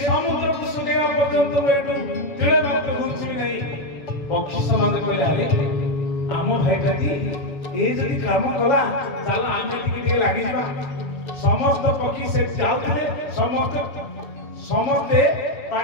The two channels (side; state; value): right; late; 7.2 ms